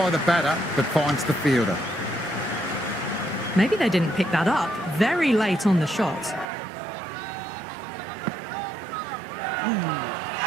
the batter, but finds the fielder. Maybe they didn't pick that up. Very late on the shot.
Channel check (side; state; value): left; drops out; at 6.5 s